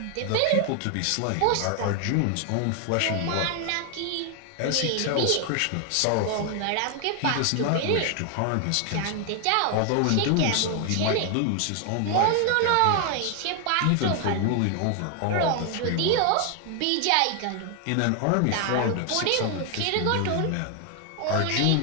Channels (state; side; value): different; both; correlation 0.01